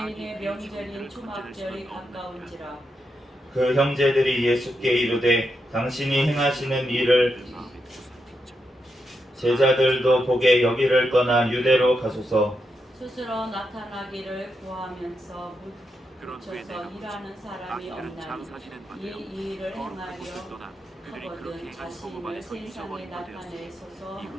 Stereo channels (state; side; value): normal; both; correlation 0.84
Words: 명절인 초막절이 가까운지라. 그 형제들이 예수께 이르되 당신이 행하시는 일을 제자들도 보게 여기를 떠나 유대로 가소서. 스스로 나타나기를 구하면서 묻혀서 일하는 사람이 없나니 이 일을 행하려 하거든 자신을 세상에 나타내소서.